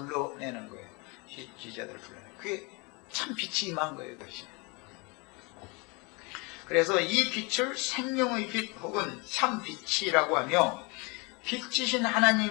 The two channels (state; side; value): quieter; right; 29.3 dB